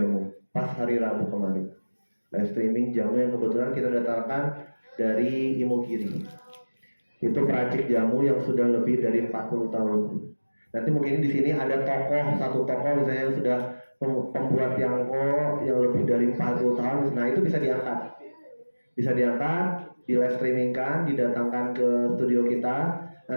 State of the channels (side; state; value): both; inverted; correlation -1.00